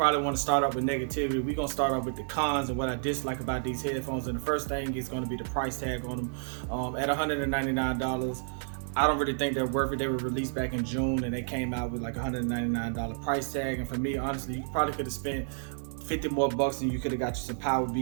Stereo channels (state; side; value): silent; left; digital silence